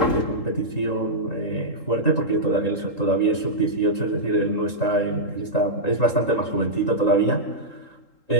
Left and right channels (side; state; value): right; late; 3.8 ms